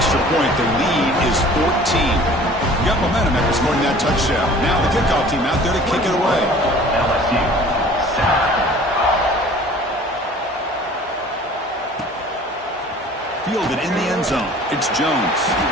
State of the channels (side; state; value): both; normal; correlation 0.48